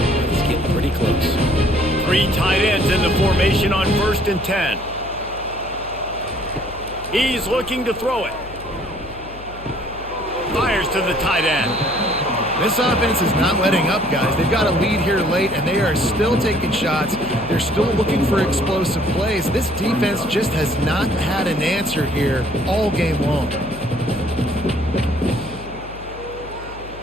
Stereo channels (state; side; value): noise; left; hum, 16 dB below the sound